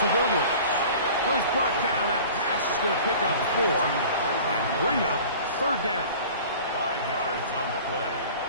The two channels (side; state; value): both; inverted; correlation -0.43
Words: Williams. Well, he's brought down. That pass is going to pick up 4 and bring up third down. 5 yards on the play.